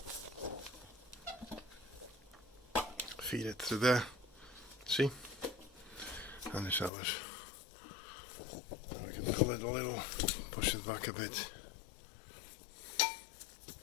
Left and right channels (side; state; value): right; drops out; at 6.9 s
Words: Feed it through there. See? And it's ours. And I can pull it a little, push it back a bit.